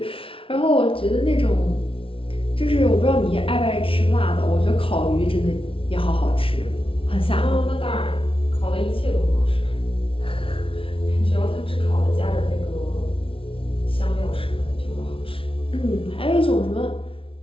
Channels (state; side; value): late; right; 0.26 ms